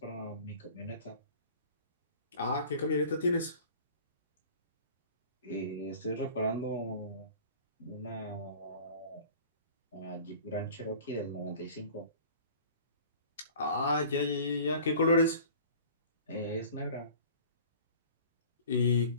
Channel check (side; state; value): both; inverted; correlation -0.45